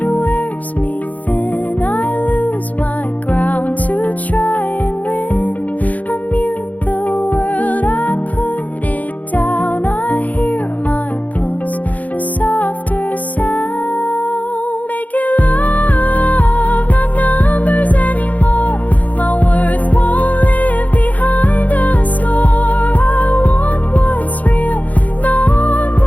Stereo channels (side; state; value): right; late; 0.076 ms